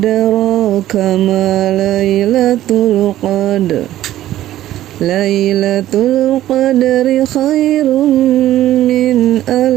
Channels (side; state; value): left; quieter; 13.7 dB